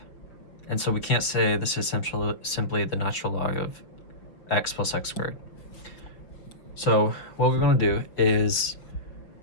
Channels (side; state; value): right; late; 5.7 ms